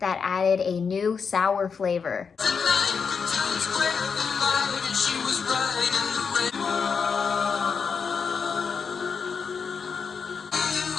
added a new sour flavor.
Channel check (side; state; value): right; quieter; 5.8 dB